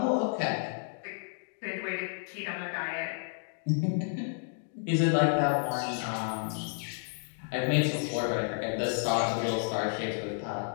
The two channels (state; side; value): silent; right; 57 dB below the other